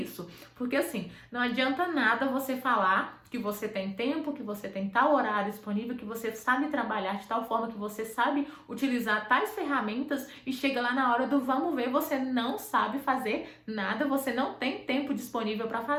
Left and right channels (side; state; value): both; identical; correlation 1.00